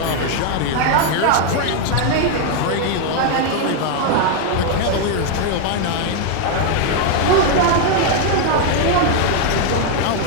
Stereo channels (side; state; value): both; different; correlation 0.01